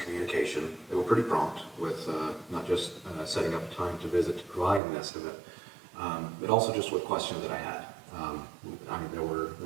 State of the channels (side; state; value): left; drops out; at 4.8 s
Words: They were pretty prompt with not just setting up time to visit to provide an estimate, but also just with questions that I had. I mean, there